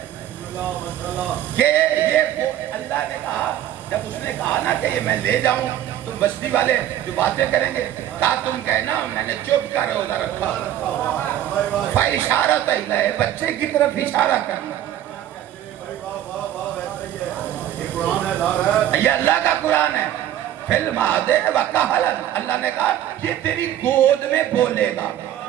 کہ یہ اللہ نے کہا، جب اس نے کہا نا کہ یہ میں لے جاؤں، تم بستی والے جو باتیں کریں گے، کہا تم کہنا میں نے چپ کر روزہ رکھا۔ فاشارۃ الیہ، بچے کی طرف اشارہ کرنا۔ یہ اللہ کا قرآن ہے۔ فی المہد وکہلا، اللہ نے کہا یہ تیری گود میں بولے گا،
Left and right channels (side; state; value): left; quieter; 11.9 dB